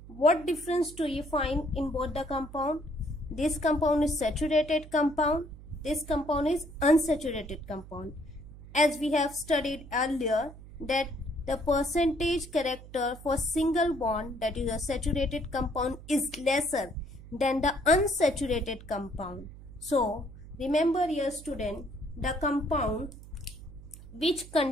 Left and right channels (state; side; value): noise; right; hum, 17 dB below the sound